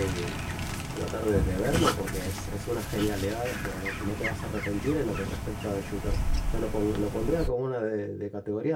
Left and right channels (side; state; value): both; identical; correlation 1.00